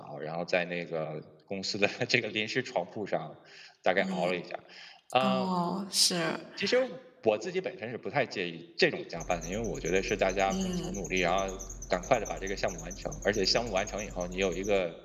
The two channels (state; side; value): identical; both; correlation 1.00